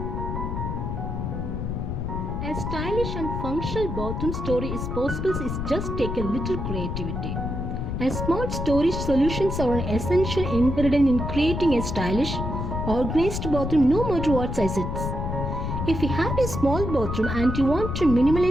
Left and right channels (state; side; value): noise; left; rumble, 3 dB below the sound